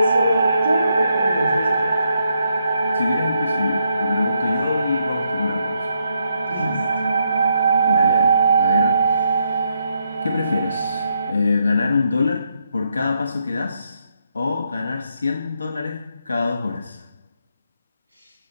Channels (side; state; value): both; inverted; correlation -0.78